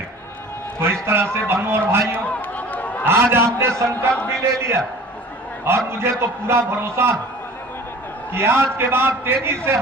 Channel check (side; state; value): both; normal; correlation 0.44